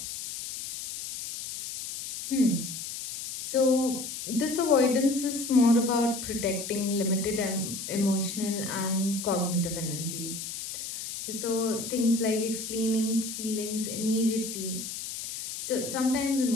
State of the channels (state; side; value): noise; left; hiss, 7 dB below the sound